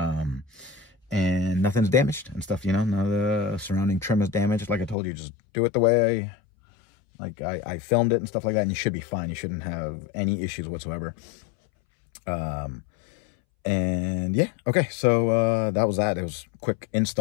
nothing's damaged and stuff, you know, none of the surrounding trim is damaged. Like I told you, just do it the way I filmed it and stuff like that, and you should be fine. You shouldn't have any issues whatsoever. And yeah, okay, so that was that. It was a quick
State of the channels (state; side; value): drops out; right; at 5.0 s